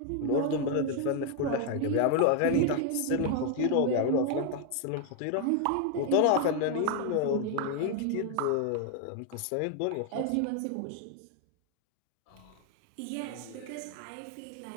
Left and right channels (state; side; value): different; both; correlation 0.01